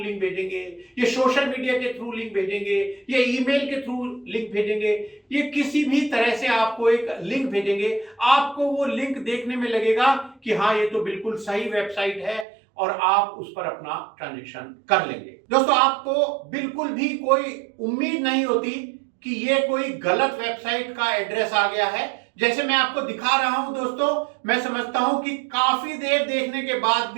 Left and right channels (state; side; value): drops out; left; at 12.5 s